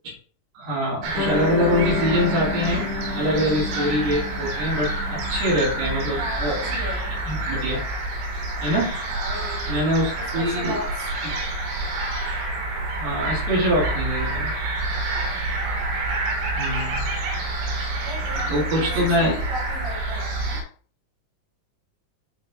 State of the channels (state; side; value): late; left; 20 ms